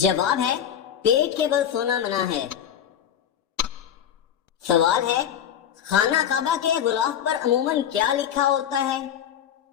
ہے پیٹ کے بل سونا منع ہے۔ سوال ہے خانہ کعبہ کے غلاف پر عموماً کیا لکھا ہوتا ہے؟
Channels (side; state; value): right; quieter; 9.5 dB